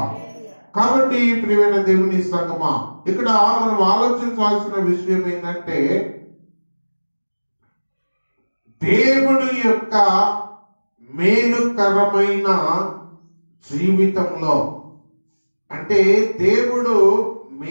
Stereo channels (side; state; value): both; inverted; correlation -1.00